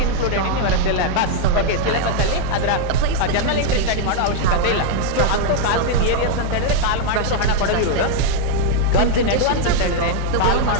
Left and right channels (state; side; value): different; both; correlation -0.01